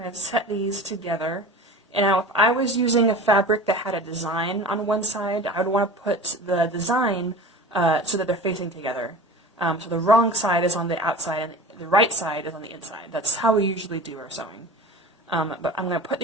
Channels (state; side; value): normal; both; correlation 0.37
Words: going to set these together. And now if I was using a fabric that had a design on one side, I would want to put the design so that they're facing together. So the wrong side is on the outside and the right side is on the inside. That's how we usually do our sewing. But I'm going to put